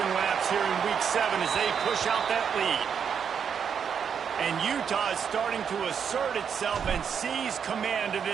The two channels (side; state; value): left; quieter; 7.3 dB